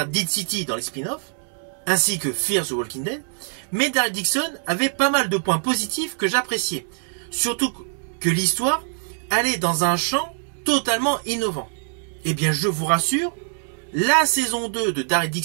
Dead City dans les spin-offs, ainsi que Fear the Walking Dead, mais Daryl Dixon avait pas mal de points positifs que j'appréciais. Surtout que l'histoire allait dans un champ totalement innovant. Eh bien, je vous rassure, la saison 2 de Daryl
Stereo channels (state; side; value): silent; left; 63 dB below the other